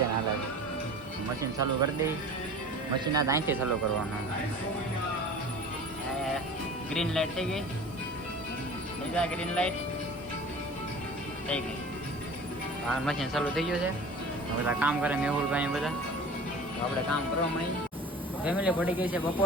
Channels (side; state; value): both; normal; correlation 0.40